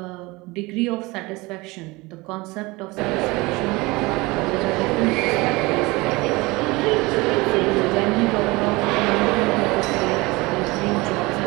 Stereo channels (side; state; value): left; quieter; 23.0 dB